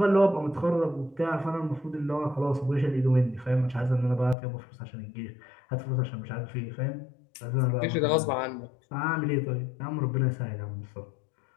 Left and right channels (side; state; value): right; drops out; at 4.4 s